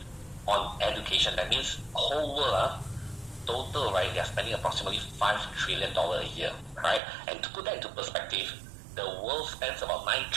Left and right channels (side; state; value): left; drops out; at 7.0 s